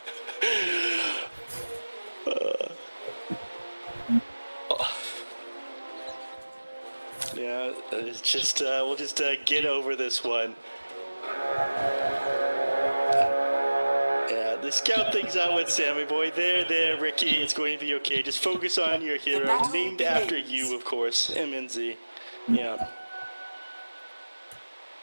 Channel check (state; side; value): inverted; both; correlation -1.00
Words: Yeah, it's just we'll just get over this one. Yeah, the scout things out with Sammy Boy. There, Ricky. It's going to be okay. Just focus on your hero, named after you, of course, MNZ. Yeah.